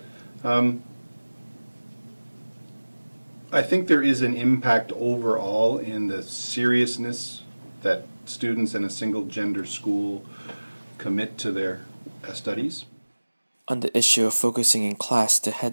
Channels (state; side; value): inverted; both; correlation -1.00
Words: I think there is an impact overall in the seriousness that students in a single-gender school commit to their studies. On the issue of focusing in class, the